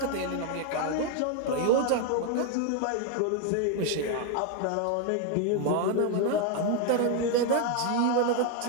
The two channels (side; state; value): both; different; correlation 0.01